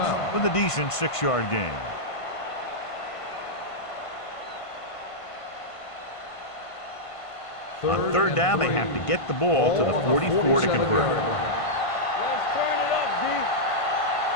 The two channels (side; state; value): right; late; 1.5 ms